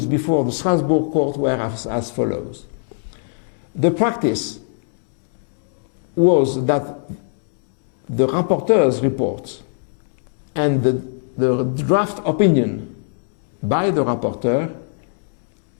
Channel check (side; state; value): right; silent; 65 dB below the other